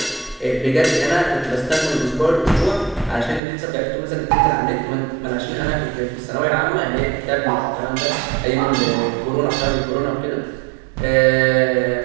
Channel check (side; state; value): left; drops out; at 3.4 s